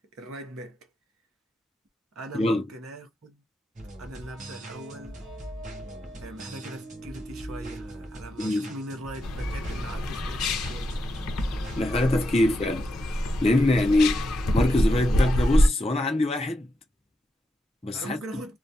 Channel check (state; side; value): normal; both; correlation 0.85